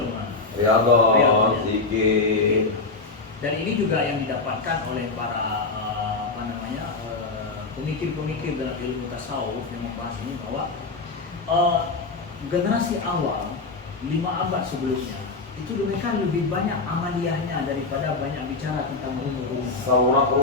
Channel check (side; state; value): right; quieter; 3.8 dB